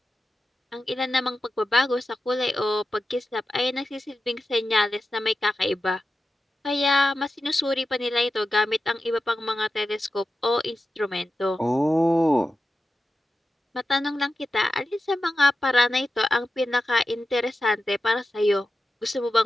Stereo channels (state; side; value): normal; both; correlation 0.92